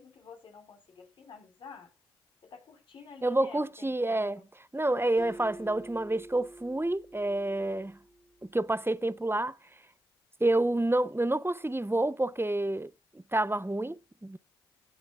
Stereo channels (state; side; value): normal; both; correlation 0.90